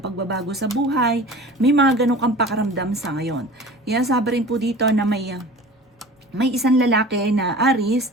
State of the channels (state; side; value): normal; both; correlation 0.40